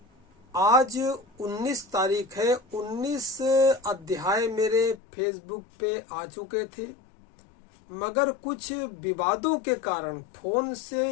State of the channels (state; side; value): drops out; right; at 5.0 s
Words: आज 19 तारीख है। 19 अध्याय मेरे फेसबुक पे आ चुके थे, मगर कुछ विवादों के कारण फोन से